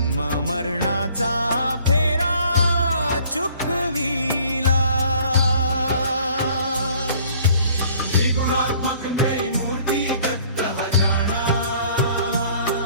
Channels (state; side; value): inverted; both; correlation -0.56